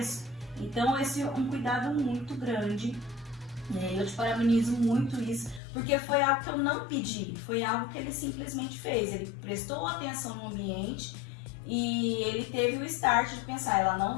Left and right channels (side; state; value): right; drops out; at 5.6 s